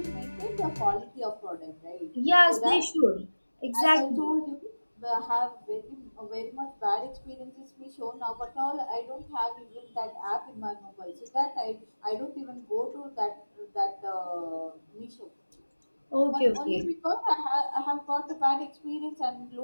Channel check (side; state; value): both; inverted; correlation -1.00